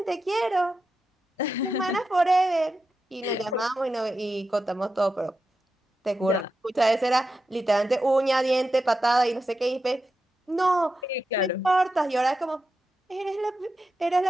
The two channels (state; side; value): normal; both; correlation 0.89